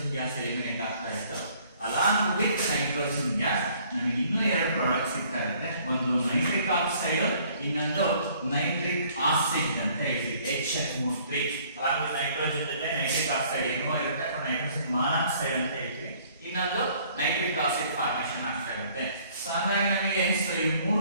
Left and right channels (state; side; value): inverted; both; correlation -0.59